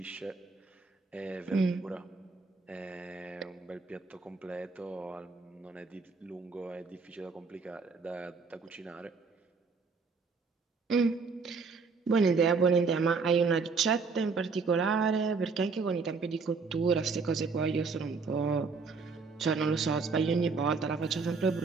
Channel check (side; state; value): left; quieter; 4.7 dB